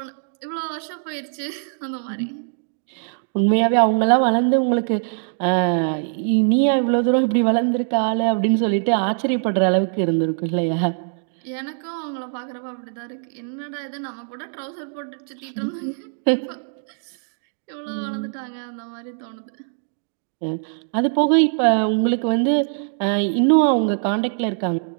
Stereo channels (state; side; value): silent; left; digital silence